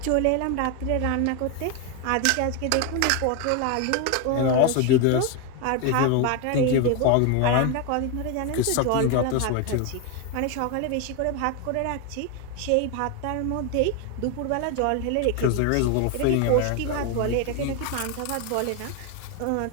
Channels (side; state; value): both; different; correlation 0.01